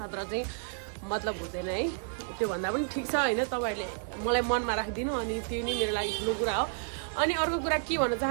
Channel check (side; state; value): left; silent; 57 dB below the other